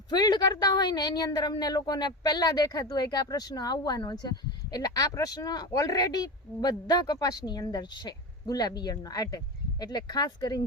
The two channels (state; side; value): normal; both; correlation 0.23